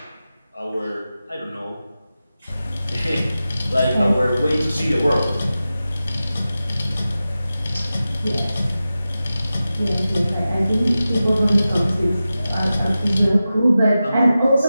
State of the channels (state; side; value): inverted; both; correlation -0.94